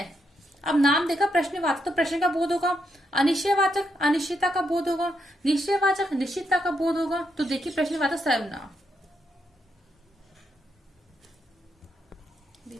अब नाम देखा प्रश्नवाचक, तो प्रश्न का बोध होगा, अनिश्चयवाचक अनिश्चितता का बोध होगा, निश्चयवाचक निश्चितता का बोध होगा। तो देखिए प्रश्नवाचक सर्वनाम,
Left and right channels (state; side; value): normal; both; correlation 0.80